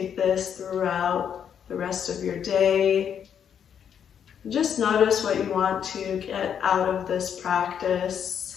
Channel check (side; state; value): right; quieter; 8.3 dB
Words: this throughout the rest of your day. Just notice what you want to get out of this practice.